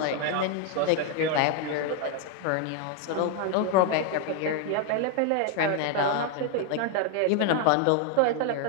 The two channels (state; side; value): different; both; correlation 0.01